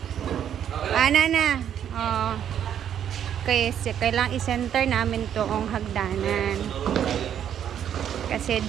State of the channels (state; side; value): quieter; left; 9.5 dB